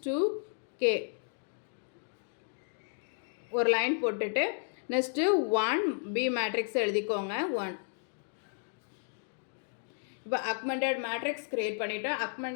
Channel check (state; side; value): silent; right; digital silence